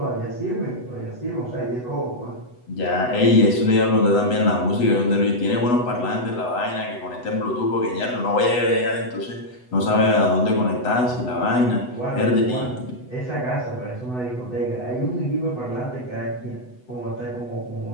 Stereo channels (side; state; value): right; late; 8.0 ms